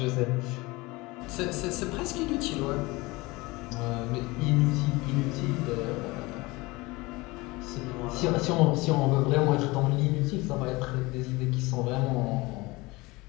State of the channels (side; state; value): right; quieter; 22.7 dB